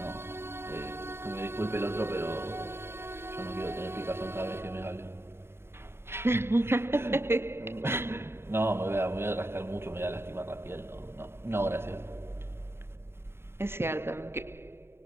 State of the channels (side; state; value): left; late; 0.12 ms